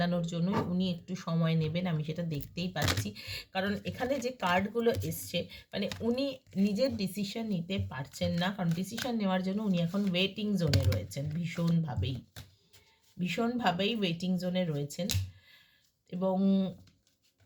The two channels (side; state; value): both; identical; correlation 1.00